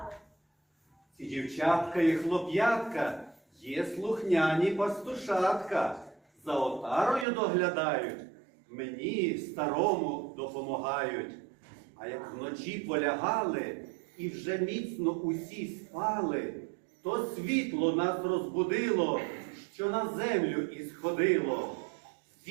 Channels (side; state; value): left; drops out; at 7.2 s